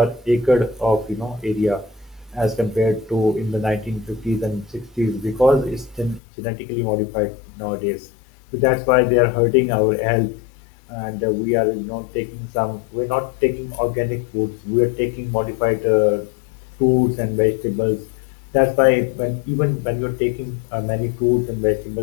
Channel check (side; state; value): right; drops out; at 6.2 s